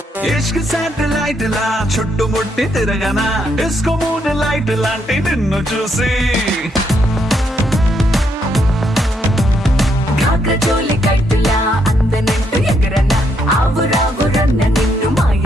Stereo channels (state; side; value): normal; both; correlation 0.75